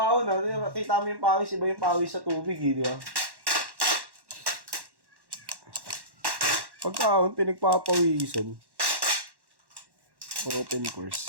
Kita mo yung pawis, iba yung pawis sa tubig eh, di ba? Pagka-ahon, pinagpapawisan. Open course.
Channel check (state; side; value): late; left; 1.1 ms